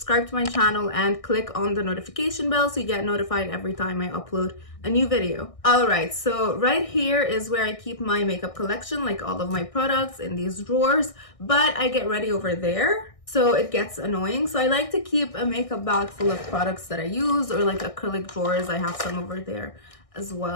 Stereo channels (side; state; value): right; late; 1.6 ms